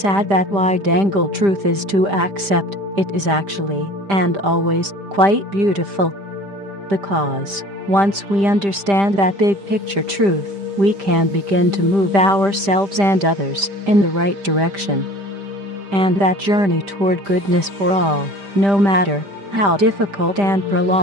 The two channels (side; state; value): left; late; 5.0 ms